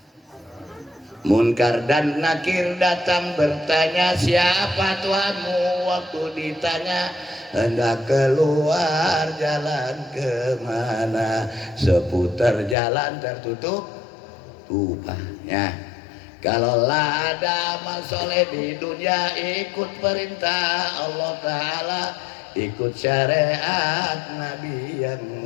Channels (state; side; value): drops out; right; at 12.8 s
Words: Munkar dan Nakir datang bertanya siapa Tuhanmu waktu ditanya hendak keluar jalan kemana seputar jalan tertutup tupanya. Kalaulah ada amal soleh di dunia ikut perintah Allah Ta'ala ikut syariat Nabi yang